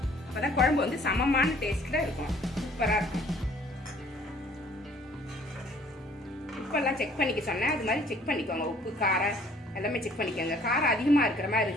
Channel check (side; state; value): both; normal; correlation 0.57